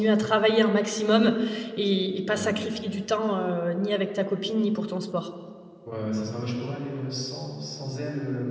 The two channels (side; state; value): both; identical; correlation 1.00